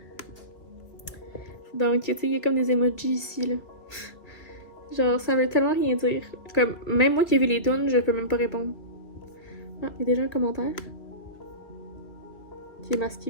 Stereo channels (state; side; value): late; right; 2.7 ms